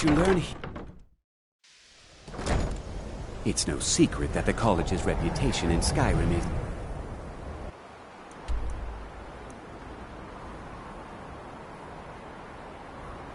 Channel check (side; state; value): both; identical; correlation 1.00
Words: you learn here... It's no secret that the college's reputation in Skyrim is...